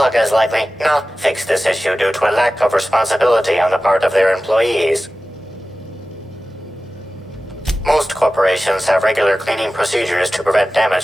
has likely not fixed this issue due to a lack of responsibility on the part of their employees. Most corporations have regular cleaning procedures to prevent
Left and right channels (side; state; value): both; normal; correlation 0.95